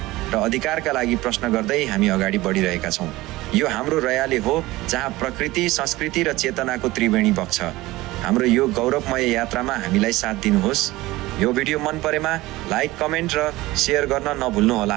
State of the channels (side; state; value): left; quieter; 18.9 dB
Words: र अधिकारका लागि प्रश्न गर्दै हामी अगाडि बढिरहेका छौँ। यो हाम्रो रयाले हो, जहाँ प्रकृति, संस्कृति र चेतनाको त्रिवेणी बग्छ। हाम्रो यो गौरवमय यात्रामा हामीलाई साथ दिनुहोस्। यो भिडियो मन परेमा लाइक, कमेन्ट र सेयर गर्न नभुल्नुहोला